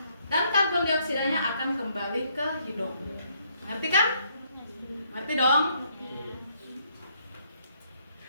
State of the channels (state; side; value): inverted; both; correlation -0.71